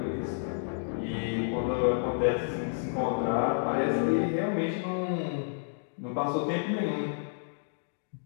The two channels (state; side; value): silent; right; digital silence